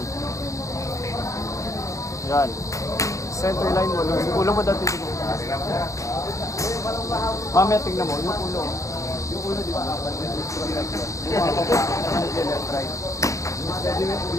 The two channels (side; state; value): right; late; 0.15 ms